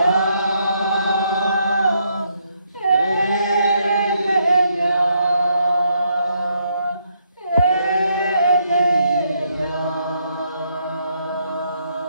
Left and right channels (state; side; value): inverted; both; correlation -0.74